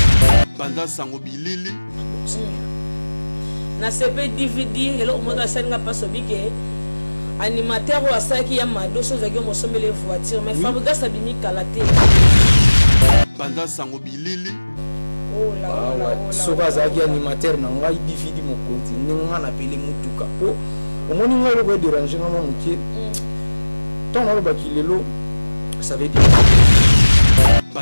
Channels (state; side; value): inverted; both; correlation -1.00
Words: banda sango bilili na CP DVD elo moto asenga paso bike animateur wa saki ya mado so zaki mo sombele voiture mais fabriga sabini kalate banda sango bilili oh la so azaki animateur na ngai DVD mo konti nga na pele mutuka po omoni nga lo ko déranger nga mokie ton lo bakilelo ça veut dire